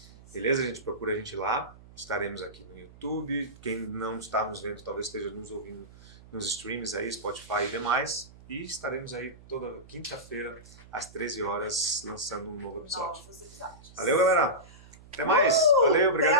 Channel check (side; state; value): right; noise; hum, 21 dB below the sound